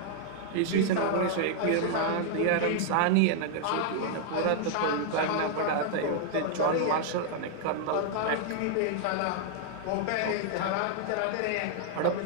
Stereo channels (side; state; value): both; different; correlation -0.01